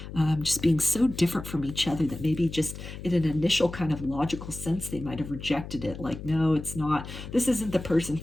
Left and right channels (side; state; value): left; noise; hum, 11 dB below the sound